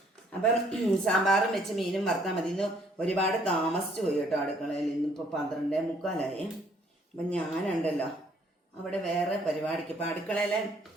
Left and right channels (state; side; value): normal; both; correlation 0.63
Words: അപ്പം സാമ്പാറും വെച്ച് മീനും വറുത്താൽ മതി. ഇന്ന് ഒരുപാട് താമസിച്ചു പോയി കേട്ടോ അടുക്കളയിൽ. ഇന്നിപ്പോൾ 12:45. അപ്പം ഞാനുണ്ടല്ലോ അവിടെ വേറെ പരിപാടിക്ക്. ഇപ്പം അടുക്കളയിലെ